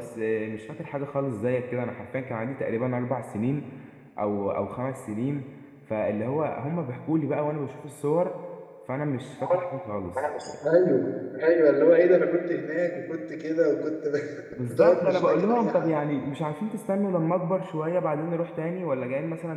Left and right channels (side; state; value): both; identical; correlation 1.00